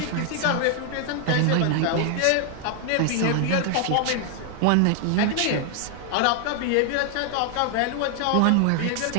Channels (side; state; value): both; different; correlation 0.00